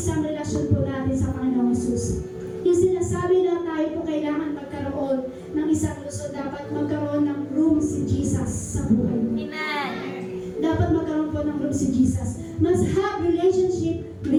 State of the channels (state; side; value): identical; both; correlation 1.00